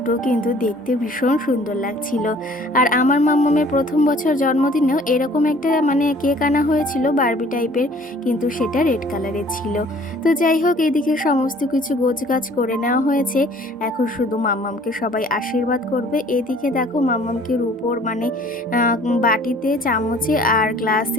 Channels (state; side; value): normal; both; correlation 0.54